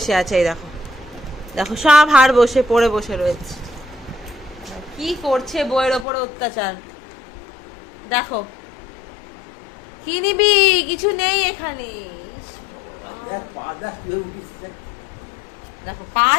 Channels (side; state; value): right; drops out; at 6.1 s